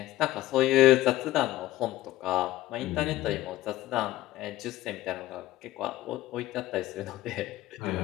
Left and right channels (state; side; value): quieter; right; 15.5 dB